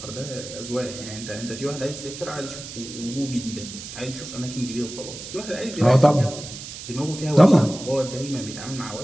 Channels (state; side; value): noise; right; hiss, 11 dB below the sound